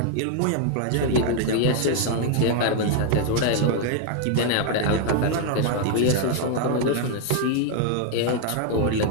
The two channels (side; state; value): both; different; correlation 0.00